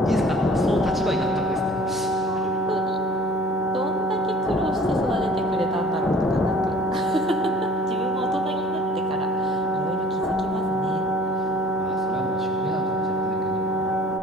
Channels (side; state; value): both; normal; correlation 0.49